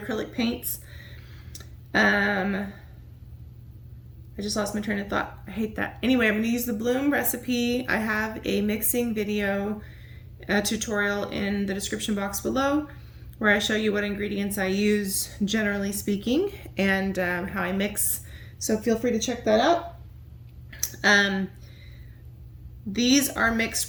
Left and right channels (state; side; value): identical; both; correlation 1.00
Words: paints. I just lost my train of thought. I hate that. Anyway, I'm going to use the Bloom recipe. I have a mixing video tutorial in the description box below where I show you what ingredients I use generally speaking and how I mix, so feel free to check that out. These are mixed